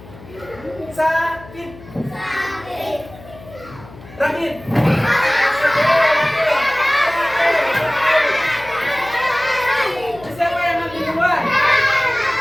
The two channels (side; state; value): left; noise; hum, 19 dB below the sound